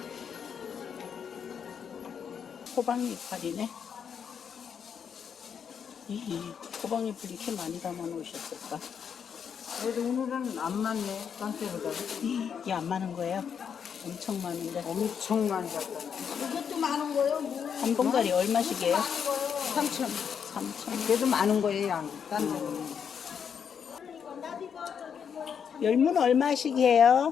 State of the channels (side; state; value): right; quieter; 7.4 dB